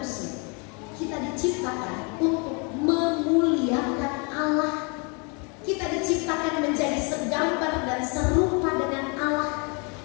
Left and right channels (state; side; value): quieter; right; 33.5 dB